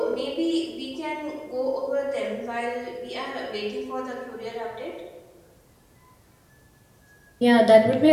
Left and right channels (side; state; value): both; identical; correlation 1.00